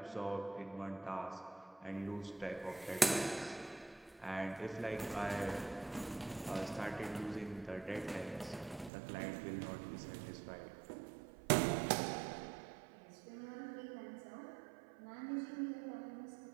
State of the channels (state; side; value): drops out; left; at 8.9 s